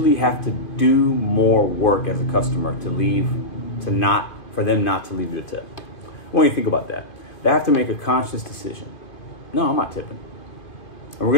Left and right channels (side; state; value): right; late; 2.5 ms